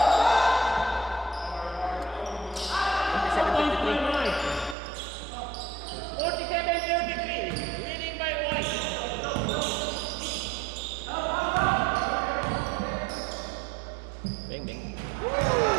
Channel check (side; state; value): left; drops out; at 4.8 s